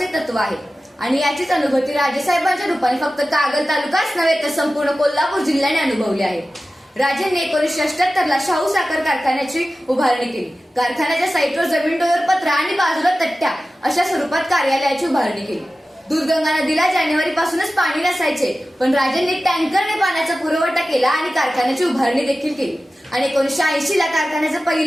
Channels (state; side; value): normal; both; correlation 0.95